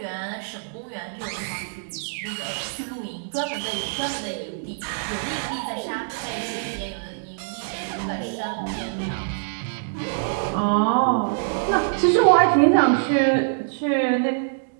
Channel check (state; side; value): silent; left; digital silence